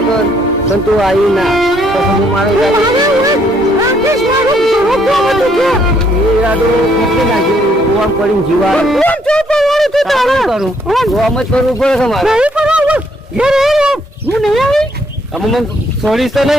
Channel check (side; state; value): both; normal; correlation 0.69